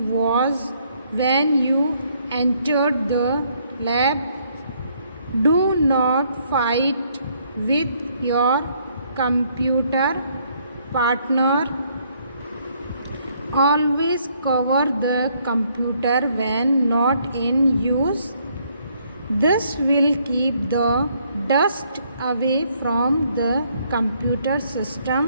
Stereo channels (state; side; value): inverted; both; correlation -0.68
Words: when you entered the lab. Do not fight with your computer partner. Always cover the computer when not in use. This will keep the dust away from the computer